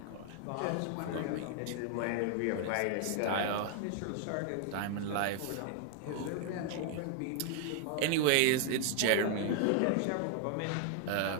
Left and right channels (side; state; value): both; different; correlation 0.00